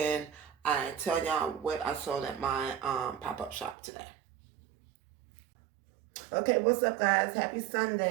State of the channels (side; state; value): left; drops out; at 3.8 s